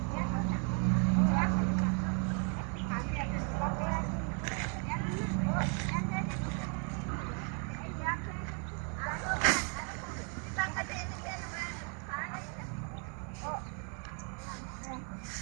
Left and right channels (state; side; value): quieter; left; 39.2 dB